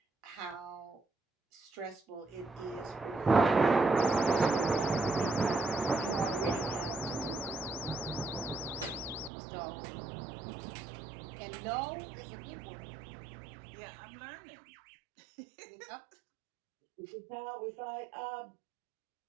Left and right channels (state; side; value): drops out; left; at 9.3 s